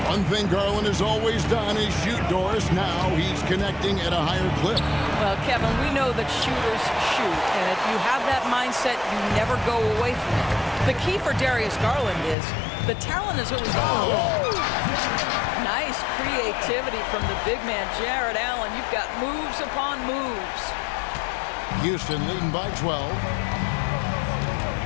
One thing Garland has always done is shoot, Doris. Now he's connecting at a higher clip. Well, Kevin, we know that shooters shoot. And if you have that mindset, you never go away from it. The key for Darius Garland is the talent is always on. Nice creativity from the big man, Jared Allen. You've got moves upon moves. Houston leading by 12.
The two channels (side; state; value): right; drops out; at 12.4 s